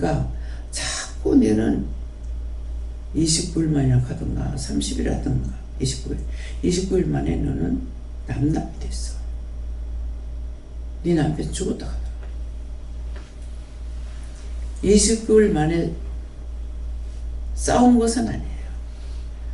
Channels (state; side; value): identical; both; correlation 1.00